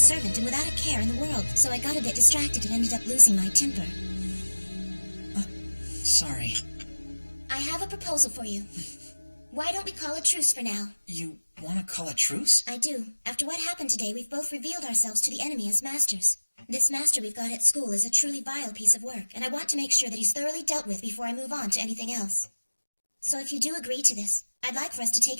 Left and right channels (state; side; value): inverted; both; correlation -1.00